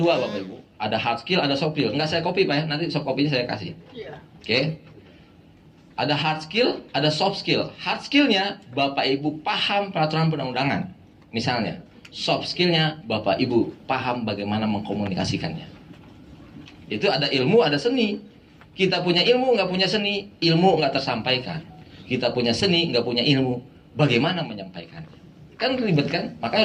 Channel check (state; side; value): identical; both; correlation 1.00